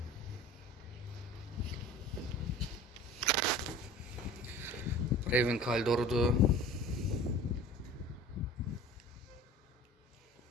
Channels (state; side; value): normal; both; correlation 0.42